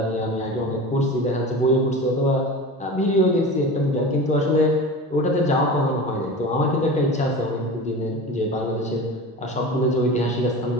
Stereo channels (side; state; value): both; normal; correlation 0.32